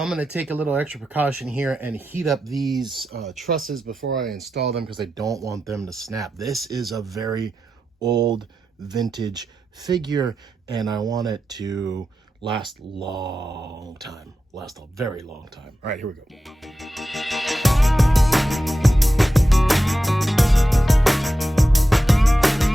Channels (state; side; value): normal; both; correlation 0.90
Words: going to take a little extra precaution here and heat up these trusses before I install them because I don't want them to snap. This is a very old vintage figure, and I want it to last long time. Last a very long time. All right, here we go.